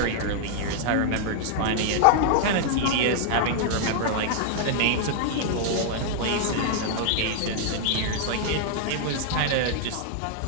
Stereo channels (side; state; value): both; different; correlation -0.01